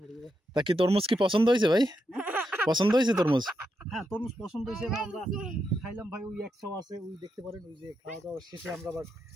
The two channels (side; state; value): both; normal; correlation 0.84